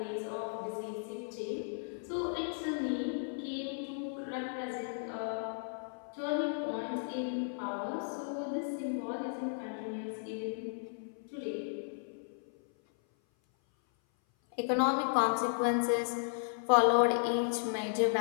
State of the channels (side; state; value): right; silent; 54 dB below the other